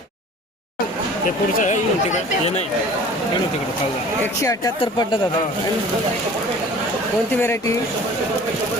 ते पुढचं आहे येऊन तिकडे हे नाही येऊन तिकडे खाऊ 178 पडलं दादा कोणती व्हेरायटी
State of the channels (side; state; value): both; normal; correlation 0.46